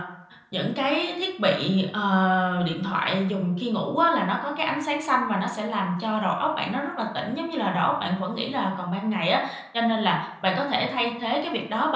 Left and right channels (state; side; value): identical; both; correlation 1.00